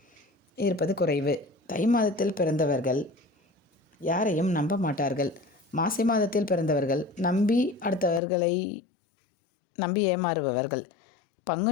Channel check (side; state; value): right; drops out; at 8.2 s